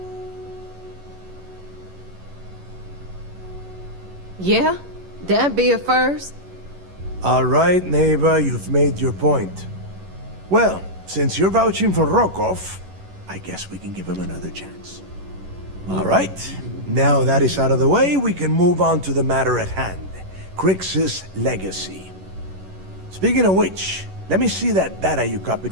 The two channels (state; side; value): late; left; 11 ms